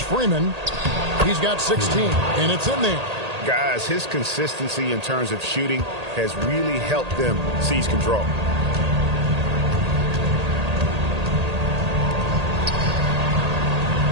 Freeman. He's got 16, and it's in there. Guys, his consistency in terms of shooting has really helped them seize control.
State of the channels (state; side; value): late; left; 1.8 ms